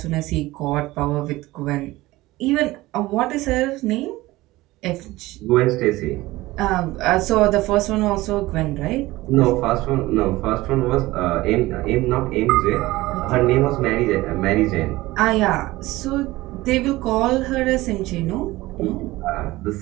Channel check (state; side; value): quieter; left; 18.7 dB